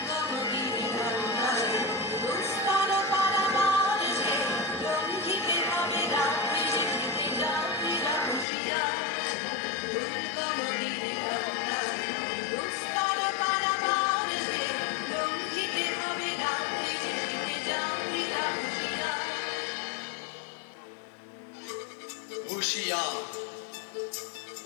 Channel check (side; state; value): right; drops out; at 8.5 s